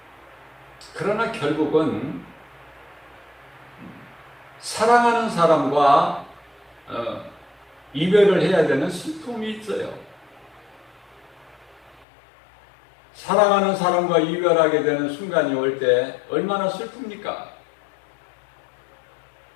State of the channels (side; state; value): right; drops out; at 12.1 s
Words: 그러나 결국은 사랑하는 사람과 이별을 해야 되는 슬픔이 있어요. 사랑하는 사람과 이별하게 되는 순간이 올 때 얼마나 슬픕니까?